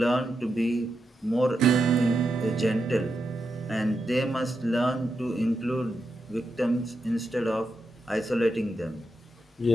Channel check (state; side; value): normal; both; correlation 0.85